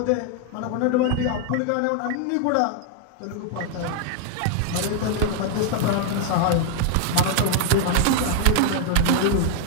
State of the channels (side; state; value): both; different; correlation 0.00